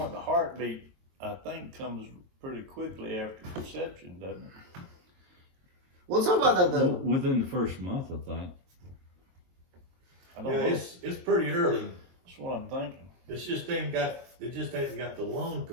the heartbeat, I think, comes pretty quickly after conception, doesn't it? We'll talk about that though. Within the first month, I think. I don't Yeah, know. it's pretty early. That's what I'm thinking. It just ain't got the lung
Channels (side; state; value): left; late; 22 ms